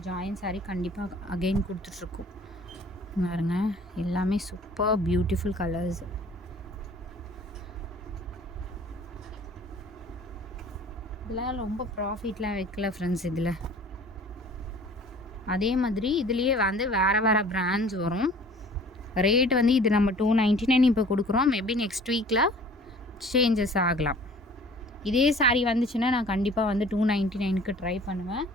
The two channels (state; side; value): normal; both; correlation 0.49